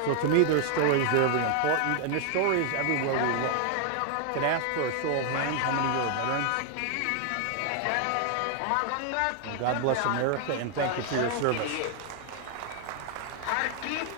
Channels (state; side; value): different; both; correlation 0.00